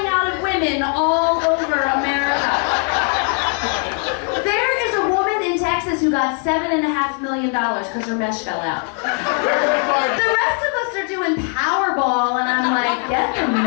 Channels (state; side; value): quieter; right; 37.4 dB